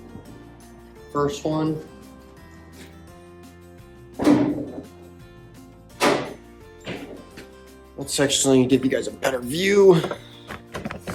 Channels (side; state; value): both; identical; correlation 1.00